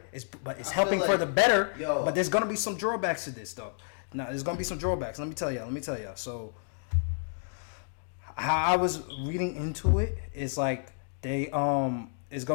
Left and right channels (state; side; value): silent; right; digital silence